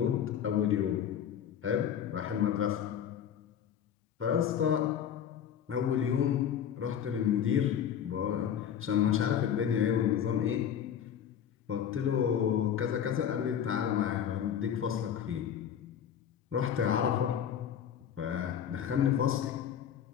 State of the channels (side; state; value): right; quieter; 9.0 dB